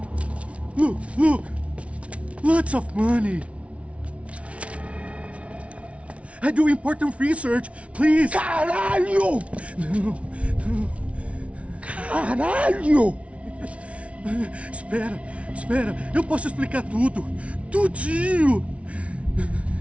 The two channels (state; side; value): late; left; 0.063 ms